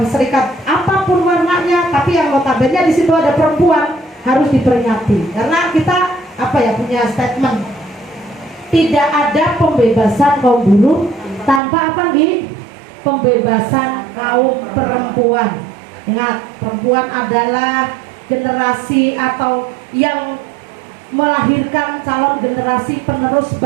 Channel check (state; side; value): drops out; left; at 11.6 s